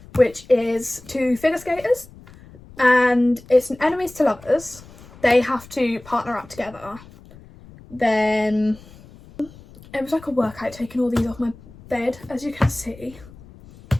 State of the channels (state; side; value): noise; left; rumble, 21 dB below the sound